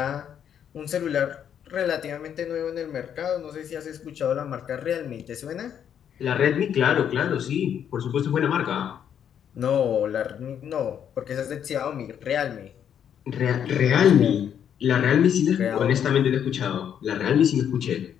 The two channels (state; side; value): quieter; right; 8.9 dB